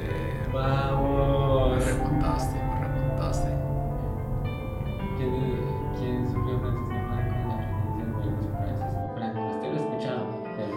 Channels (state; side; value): identical; both; correlation 1.00